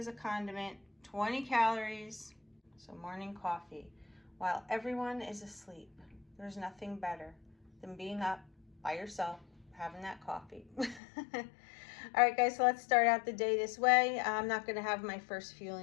a condiment, 20 calories. So morning coffee. While everyone is asleep, there's nothing better than being up by yourself, having that coffee. All right, guys, so let's start out the day this way. I'm not gonna have my first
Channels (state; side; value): drops out; right; at 11.0 s